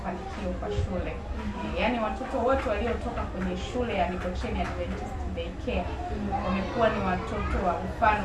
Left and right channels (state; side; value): identical; both; correlation 1.00